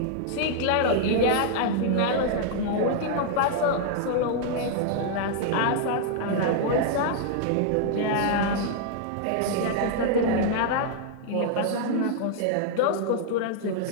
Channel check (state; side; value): different; both; correlation -0.01